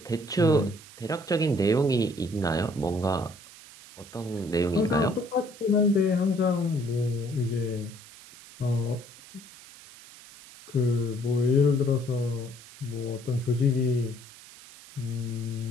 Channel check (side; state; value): right; noise; hiss, 19 dB below the sound